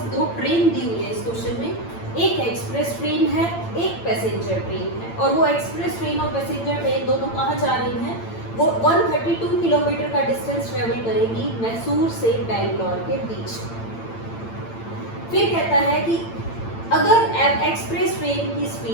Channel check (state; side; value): late; right; 8.9 ms